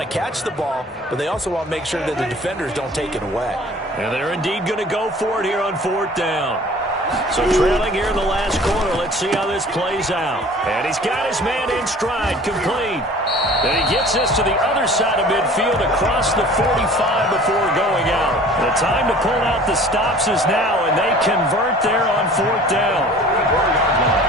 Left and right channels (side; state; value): both; normal; correlation 0.47